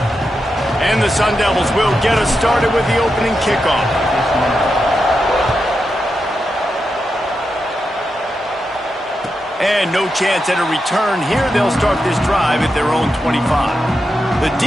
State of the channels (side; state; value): both; normal; correlation 0.87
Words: And the Sun Devils will get us started with the opening kickoff. And no chance at a return here. They'll start this drive at their own 25. The